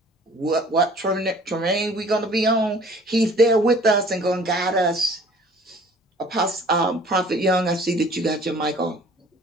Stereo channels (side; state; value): both; normal; correlation 0.51